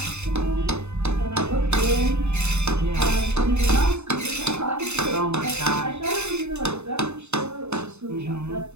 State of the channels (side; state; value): left; late; 0.81 ms